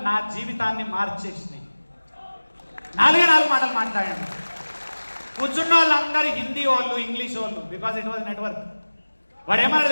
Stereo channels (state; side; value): inverted; both; correlation -1.00